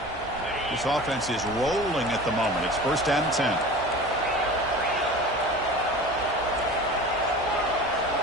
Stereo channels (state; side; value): noise; right; hum, 17 dB below the sound